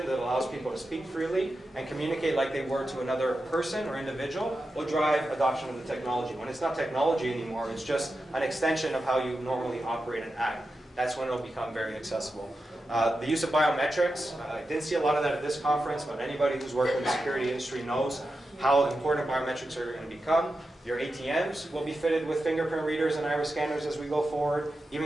that allows people to speak freely and communicate like they were to another person or individual will drive adoption of the technology. When it's not technology anymore, it's just an extension of how you normally operate and act. That's when it'll become very accessible. The use of biometrics, I didn't see a lot of that at this conference, but anybody who's worked in the security industry knows how important biometrics are going to become. Your ATMs will be fitted with fingerprint readers and iris scanners as we go forward.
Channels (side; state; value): both; normal; correlation 0.90